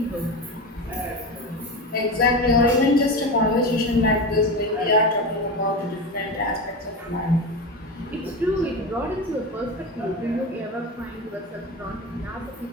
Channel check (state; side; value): normal; both; correlation 0.23